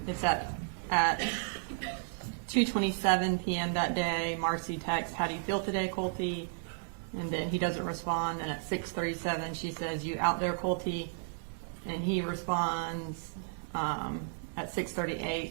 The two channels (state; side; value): silent; left; digital silence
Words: it's at 2:27 p.m. that day. Marcy texts, "How do you feel today, Colty?" And then he doesn't respond. And at 6:37, she says, "You out there, Colty?" And he responds at